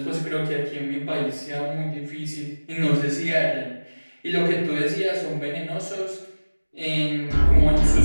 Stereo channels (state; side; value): inverted; both; correlation -1.00